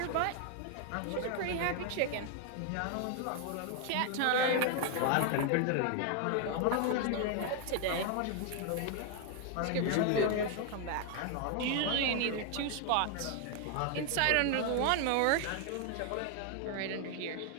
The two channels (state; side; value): different; both; correlation 0.00